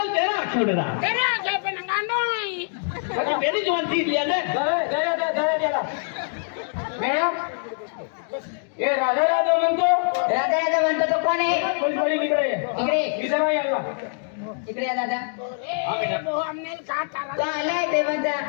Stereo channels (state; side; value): silent; right; digital silence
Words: तेरा आठवडे रहा तेरा क्या पे नंगांडो है अरे मेरी जवान थी लिया ले मॅडम हे राधा राधा म्हणतो. राधा राधा म्हणतो तो कोण आहे? पोलीसवाली इकडे ये. इकडे. विचारा याला. इकडे या दादा. वो हमने कहा था तो आलाय देवाचा